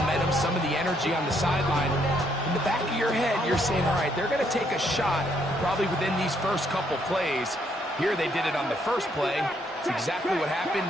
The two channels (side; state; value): both; normal; correlation 0.71